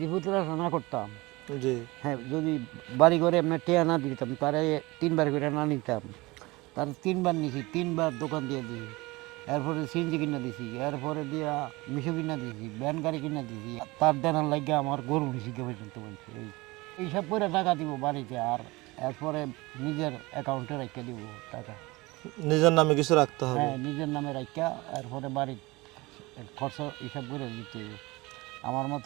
না করতাম, জি। হ্যাঁ, যদি বাড়ি ঘরে আপনার টেয়া না দিতাম, তারে ৩ বার করে না নিতাম, তার ৩ বার নিছি, ৩ বার দোকান দিয়ে দিছি, এরপরে সিএনজি কিনা দিছি, এরপরে দিয়া মিশো কিনা দিছি, ভ্যান গাড়ি কিনা দিছি, তার দেনার লাগে আমার গরু নিছি কে পর্যন্ত বলছে। এইসব করে টাকা দিব বাড়িতে, আর এরপরে নিজের অ্যাকাউন্টে রেখে দিব টাকা। নিজের নামে কিছু রাখতে হবে। হ্যাঁ, নিজের নামে রাখা, এরপরে বাড়ির খরচ হিসাব করে দিতে হবে। আমার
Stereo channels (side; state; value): left; quieter; 22.3 dB